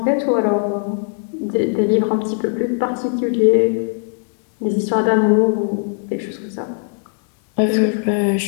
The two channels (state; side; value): silent; right; digital silence